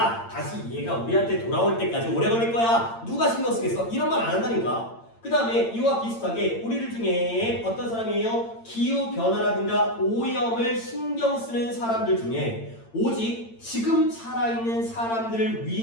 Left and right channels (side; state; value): right; late; 8.8 ms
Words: 다시 얘가 우리한테 돌아올 때까지 오래 걸릴 거야. 누가 신경 쓰겠어? 이런 말 안 한다니까. 그 다음에 이와 비슷하게 우리들 중에 어떤 사람이에요? 기후변화라든가 오염을 신경 쓰는 사람들 중에 오직 지금 살아있는 사람들을